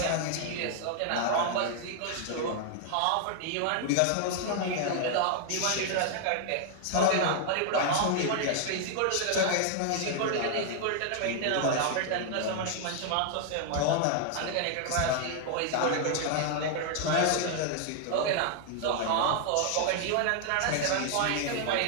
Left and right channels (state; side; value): different; both; correlation 0.00